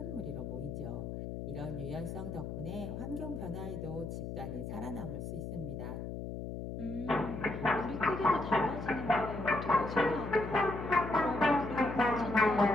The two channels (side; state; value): left; noise; hum, 6 dB below the sound